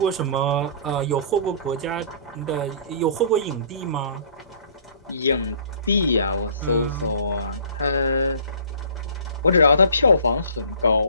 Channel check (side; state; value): both; inverted; correlation -0.49